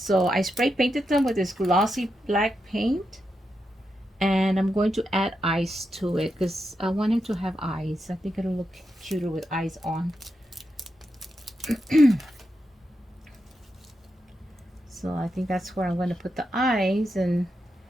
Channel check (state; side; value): normal; both; correlation 0.86